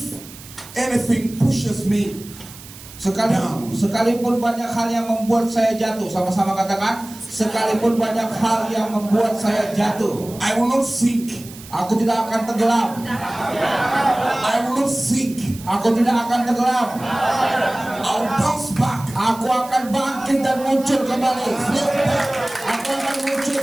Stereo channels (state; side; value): noise; right; hiss, 18 dB below the sound